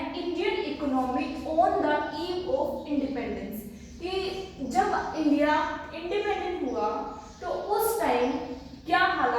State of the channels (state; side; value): identical; both; correlation 1.00